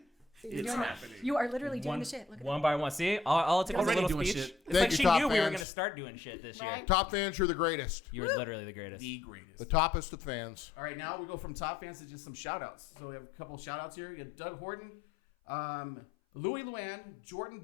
It's happening. You are literally doing the shit. Look at One by one. See, all it took was a Already little doing speech. shit. It's Thank like you, she top knew we were fans. going to start doing shit this year. Right. Top fans, you're the greatest. You were literally the greatest. The greatest. The toppest of fans. All right, now we go from top fans to just some shout outs. So we have a couple shout outs here. You got Doug Horton, Louis Luann, Jordan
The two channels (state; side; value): drops out; right; at 5.7 s